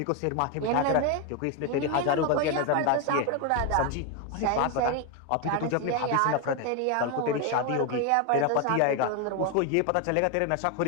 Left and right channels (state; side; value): different; both; correlation 0.01